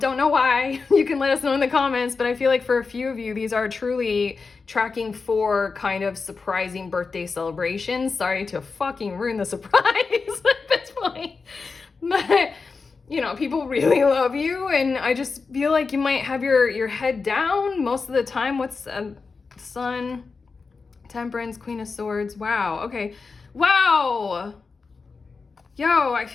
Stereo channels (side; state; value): right; quieter; 4.6 dB